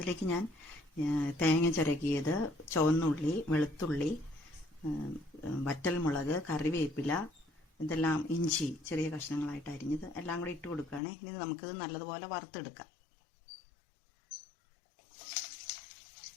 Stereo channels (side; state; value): right; drops out; at 11.0 s